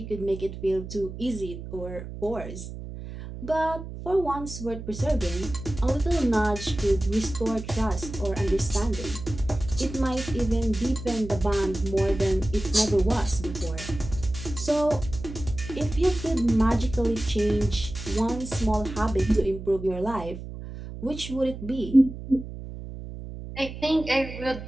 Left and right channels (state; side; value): noise; right; hum, 10 dB below the sound